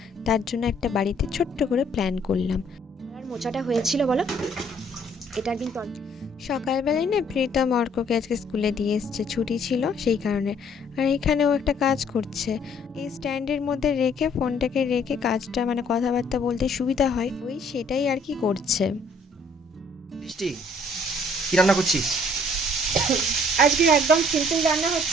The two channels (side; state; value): both; normal; correlation 0.62